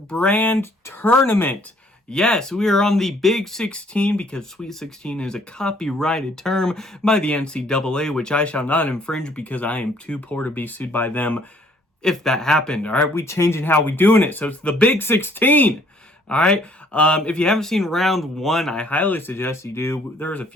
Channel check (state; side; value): normal; both; correlation 0.61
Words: Tournament. Yes, we are on the Big 16 because Sweet 16 is a copyrighted term by the NCAA, which I shall not infringe because I am too poor to be sued by them if that happened. All right, we changing how we doing it, so it's the Big 16. All right. If you haven't seen round 1, I highly suggest you do. There's a